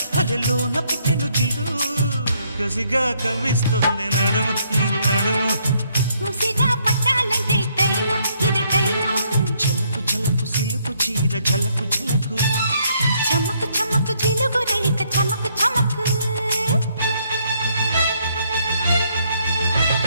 అలెలోన పుట్టెను జిల్లు కసిగా కవిస్తుంది నడుము నీ నడుము ముసిగా పట్టాలంటే టైము ఇది టైము చలకు చలకు సిలుకు చీర ఝలకు ఝలకు చమ్మకు చమ్మకు చిలుగు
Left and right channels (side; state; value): both; inverted; correlation -0.70